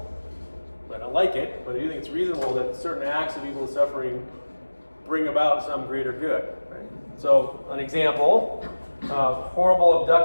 I don't like it, but I do think it's reasonable that certain acts of evil and suffering bring about some greater good. Right? So an example, horrible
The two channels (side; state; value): both; inverted; correlation -1.00